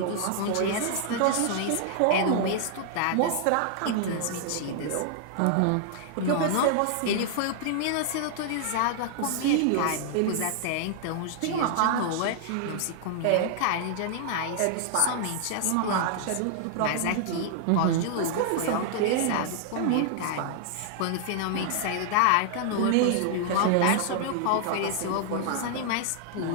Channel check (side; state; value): both; different; correlation -0.01